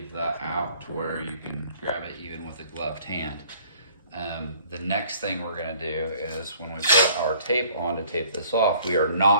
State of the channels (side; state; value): both; inverted; correlation -0.55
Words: out to where you can grab it even with a gloved hand. The next thing we're going to do is when we put our tape on to tape this off, we are